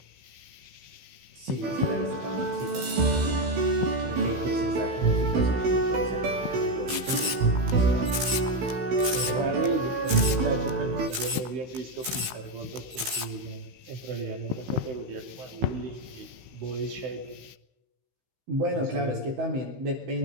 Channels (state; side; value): late; left; 16 ms